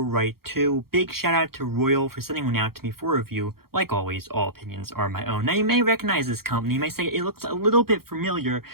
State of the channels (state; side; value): late; left; 0.94 ms